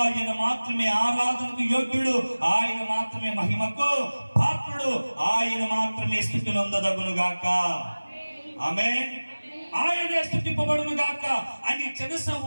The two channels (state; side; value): inverted; both; correlation -1.00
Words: మాత్రమే ఆరాధనకు యోగ్యుడు, ఆయన మాత్రమే మహిమకు పాత్రుడు, ఆయన మాత్రమే స్తుతి నొందదగును గాక, ఆమేన్. ఆయనే స్తుతింపబడును గాక అని